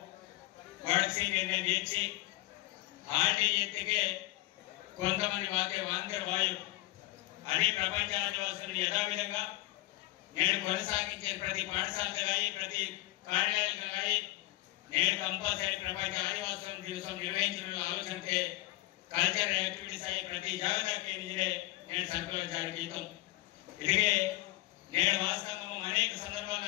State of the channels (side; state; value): right; quieter; 19.0 dB